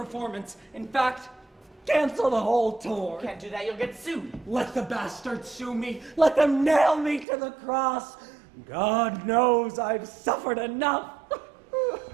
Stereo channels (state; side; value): drops out; left; at 7.2 s